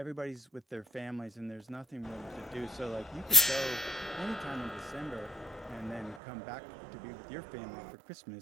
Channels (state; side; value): drops out; left; at 6.2 s